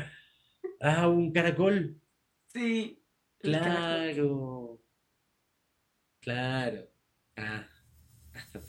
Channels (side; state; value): both; identical; correlation 1.00